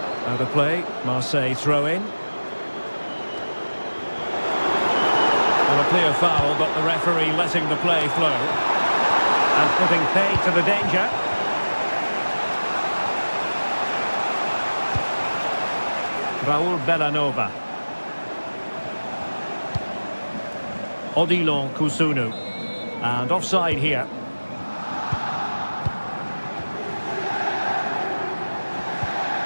Out of play. Marseille throw in. Well, a clear foul, but the referee letting the play flow. And putting paid to the danger. Raul Bellanova. Odilon Kusunu. And offside here.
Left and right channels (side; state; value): both; inverted; correlation -1.00